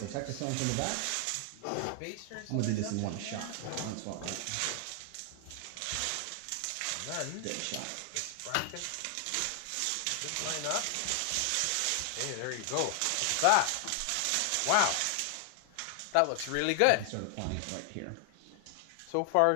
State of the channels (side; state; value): both; different; correlation 0.00